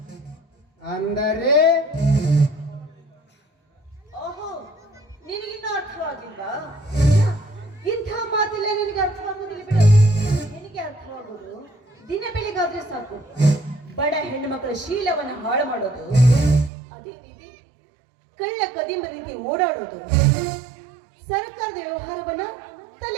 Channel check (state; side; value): drops out; left; at 16.7 s